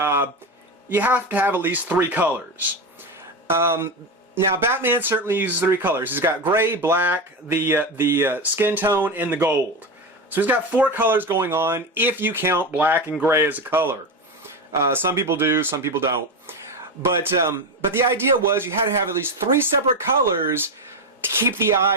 you have to have at least 3 colors. Now, Batman certainly uses 3 colors. He's got gray, black, the skin tone, and the gold. So he's got 4 colors going on if you count black and gray as a color. Some people do, some people don't. But the idea was you had to have at least 3 separate colors to keep the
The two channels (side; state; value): both; normal; correlation 0.17